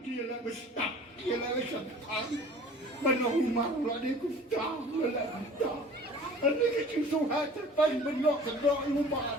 bestak, kira bestak. Benang malu ada kustar, ada kustar. Ada kecil suhat depan benok kedok rumah.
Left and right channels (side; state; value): both; normal; correlation 0.46